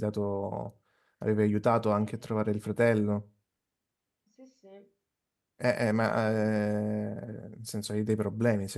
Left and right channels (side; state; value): both; identical; correlation 1.00